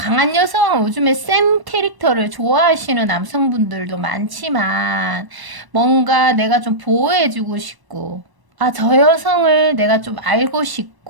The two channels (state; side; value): late; left; 1.1 ms